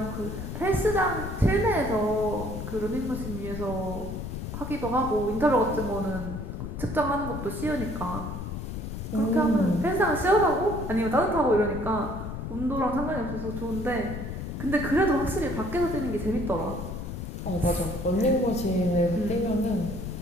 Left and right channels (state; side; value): noise; left; rumble, 6 dB below the sound